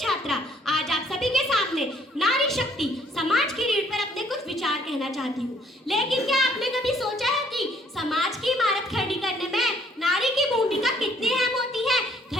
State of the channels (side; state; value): both; normal; correlation 0.63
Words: आज आप सभी के सामने नारी शक्ति समाज की रीढ़ पर अपने कुछ विचार कहना चाहती हूँ। लेकिन क्या आपने कभी सोचा है कि समाज की इमारत खड़ी करने में नारी की भूमिका कितनी अहम होती है?